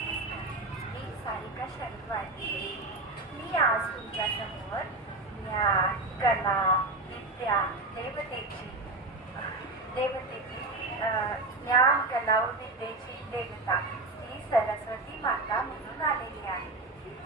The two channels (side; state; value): left; quieter; 3.1 dB